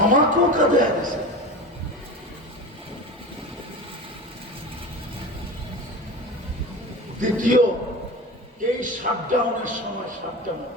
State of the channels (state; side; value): normal; both; correlation 0.30